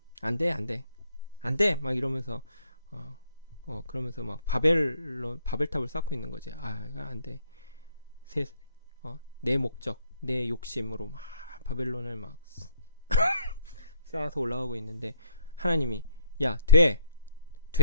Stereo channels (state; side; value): inverted; both; correlation -0.64